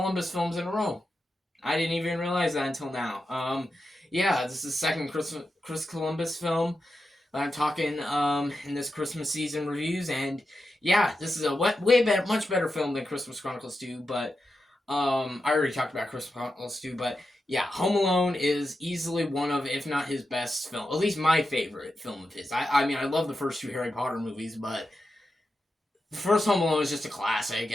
films in a row. I didn't even realize that until now. Yeah, this is the second Chris Columbus film I'm talking in this Christmas season reviews, and yeah, this is a way better, much better film than Christmas Chronicles 2. But I already talked about Christmas Chronicles 2, but yeah, Home Alone is easily one of, if not his best film, at least my favorite film of his. I mean, I love the first two Harry Potter movies, but the first Home Alone is just a classic,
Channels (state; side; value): normal; both; correlation 0.89